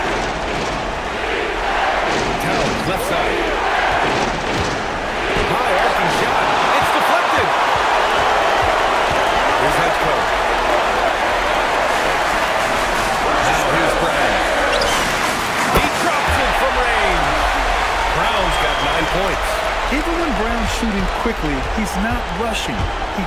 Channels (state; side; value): identical; both; correlation 1.00